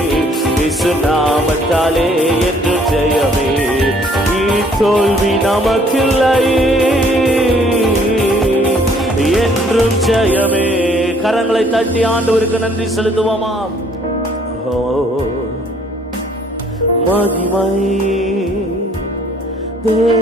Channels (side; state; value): both; normal; correlation 0.61